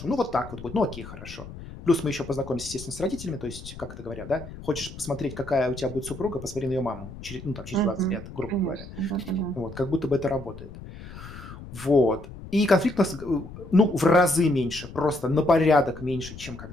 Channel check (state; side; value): noise; left; rumble, 14 dB below the sound